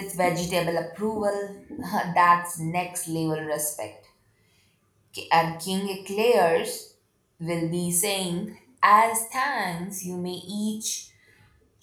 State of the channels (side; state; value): both; identical; correlation 1.00